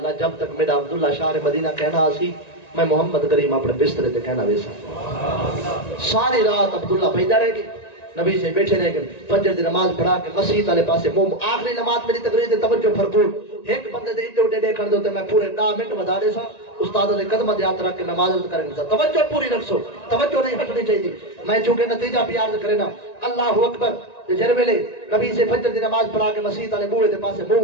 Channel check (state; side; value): late; right; 1.9 ms